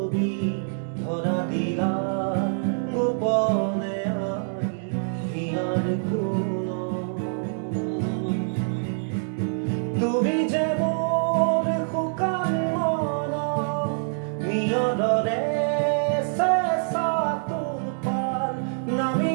ধরা দিলা গোপনে আনি হিয়ার কোন তুমি যে মোর শুকান মন নিয়দৰে চেঁচা তোপাল নামি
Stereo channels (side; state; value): left; silent; digital silence